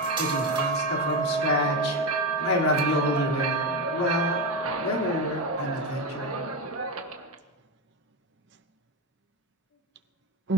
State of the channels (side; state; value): both; normal; correlation 0.14